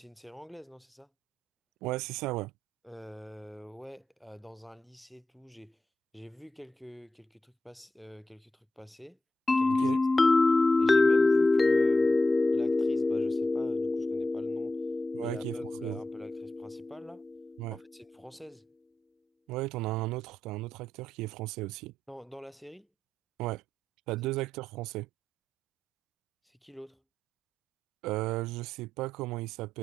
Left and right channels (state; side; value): normal; both; correlation 0.89